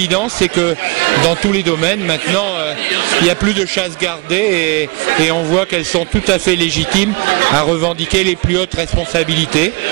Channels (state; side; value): quieter; left; 27.6 dB